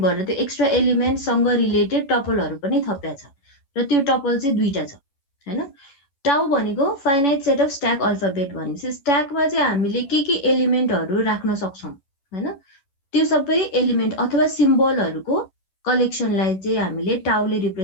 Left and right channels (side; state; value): right; late; 11 ms